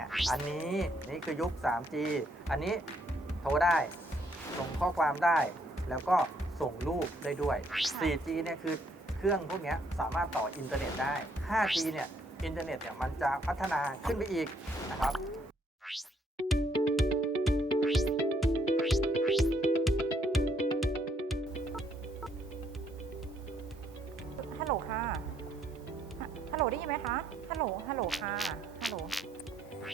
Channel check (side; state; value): both; normal; correlation 0.70